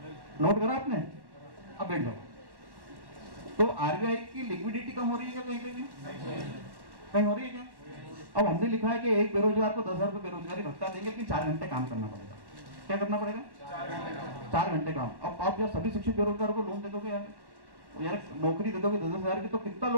नोट करा आपने? अब बैठ जाओ। तो आरबीआई की लिक्विडिटी कम हो रही है क्या? कहीं कहीं कहीं हो रही है क्या? अब हमने लिखा है कि एक बेरोजगार को 10,000 रुपए बेरोजगारी भत्ता देंगे, लेकिन 4 घंटे काम करना पड़ेगा। क्या करना पड़ेगा? 4 घंटे काम। अब आप जब सभी शिक्षित बेरोजगारों को लोन दे दोगे यार नौकरी दे दोगे 10,000 की, तो कितना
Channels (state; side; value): late; left; 1.1 ms